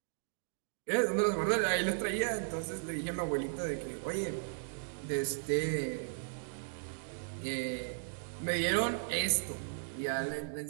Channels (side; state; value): left; silent; digital silence